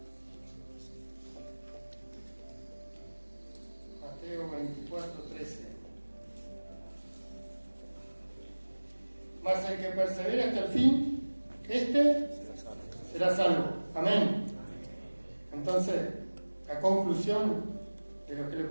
Mateo 24:13. Mas el que persevere hasta el fin, este será salvo. Amén. Entonces, la conclusión de lo que les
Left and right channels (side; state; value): both; inverted; correlation -1.00